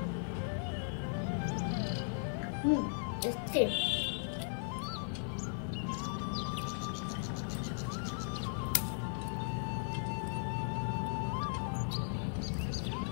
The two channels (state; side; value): silent; right; 53 dB below the other